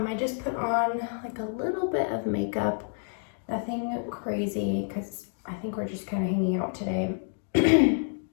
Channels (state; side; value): silent; right; digital silence